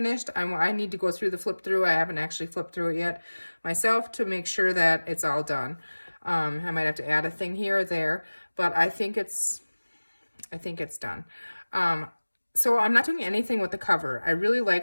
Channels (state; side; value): inverted; both; correlation -1.00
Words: I need to go through the flip through. I haven't actually flipped through it yet myself to make sure that it's all done. I might have to add a thing here or there, but I think it's done. So I'm not doing anything with the cover. I really